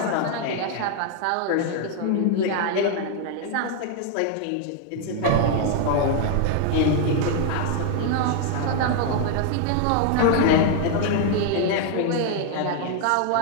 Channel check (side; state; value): both; different; correlation 0.00